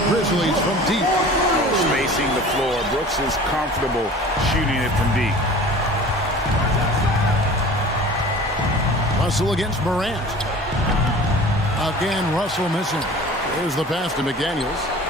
Grizzlies from deep. Spacing the floor. Brooks is comfortable shooting it from deep. Russell against Morant. Again, Russell missing. There's the pass to McDaniels.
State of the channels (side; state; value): both; normal; correlation 0.42